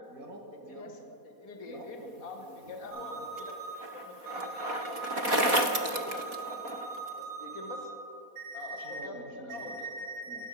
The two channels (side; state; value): left; late; 4.2 ms